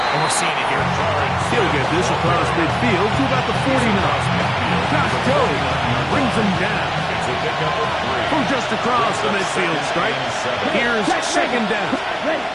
and we're seeing it here. He'll get this across midfield to about the 49. Josh Jones brings him down. From just across the midfield stripe, here's 2nd down.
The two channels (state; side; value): identical; both; correlation 1.00